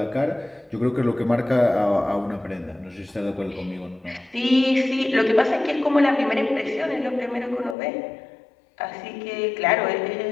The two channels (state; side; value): drops out; right; at 7.8 s